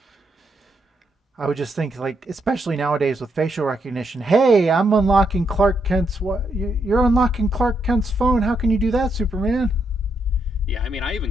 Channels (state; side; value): normal; both; correlation 0.79